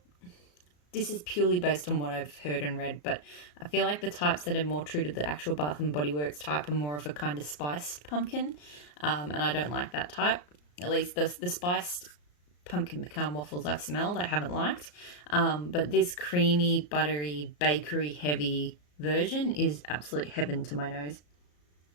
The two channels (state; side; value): late; right; 34 ms